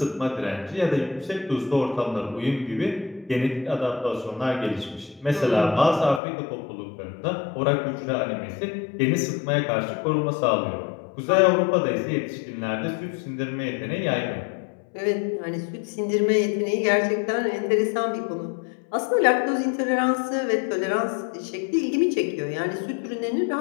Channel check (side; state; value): right; drops out; at 6.2 s